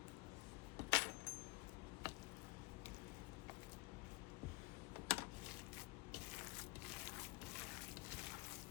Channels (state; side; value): quieter; right; 22.4 dB